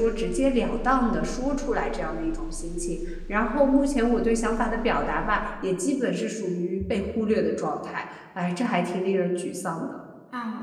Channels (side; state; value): both; identical; correlation 1.00